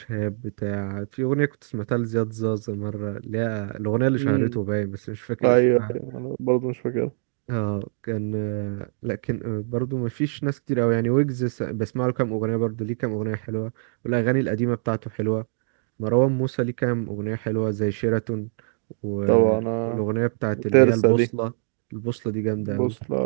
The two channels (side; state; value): left; silent; digital silence